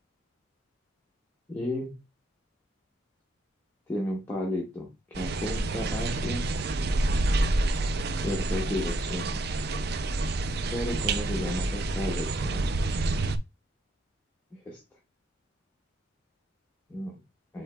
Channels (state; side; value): normal; both; correlation 0.75